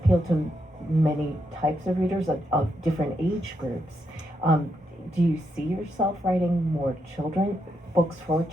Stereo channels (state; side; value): normal; both; correlation 0.81